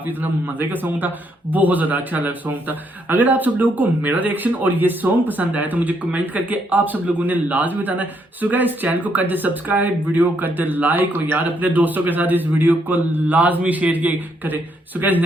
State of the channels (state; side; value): normal; both; correlation 0.74